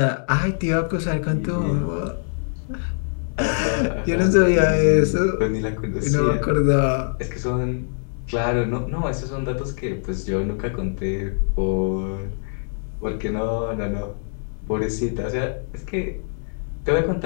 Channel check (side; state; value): right; silent; digital silence